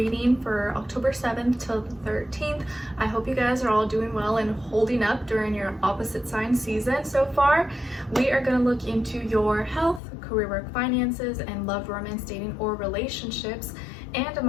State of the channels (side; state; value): right; drops out; at 10.0 s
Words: for October 7th till the 13th. I hope you guys are all doing well and holding up during your opposite sign season so far. We are going to look into your health, career, work, finances, and love, romance, dating, or relationships. And I'm